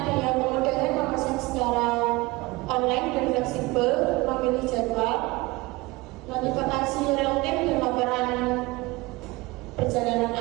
kemudahan memesan secara online dan fleksibel, memilih jadwal, notifikasi real-time dan laporan perjalanan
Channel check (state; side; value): quieter; left; 22.5 dB